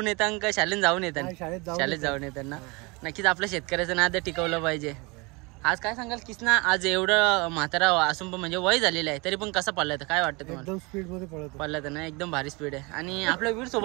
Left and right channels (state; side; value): quieter; left; 27.2 dB